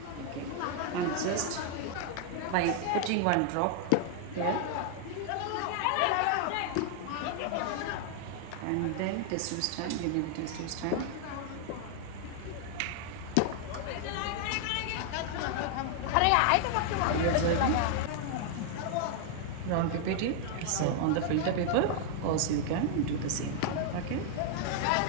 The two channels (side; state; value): both; different; correlation 0.00